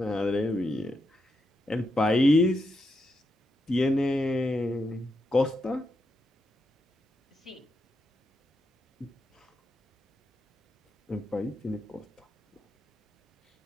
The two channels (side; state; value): both; normal; correlation 0.84